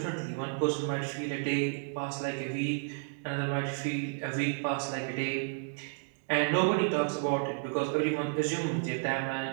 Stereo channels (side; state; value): left; silent; 56 dB below the other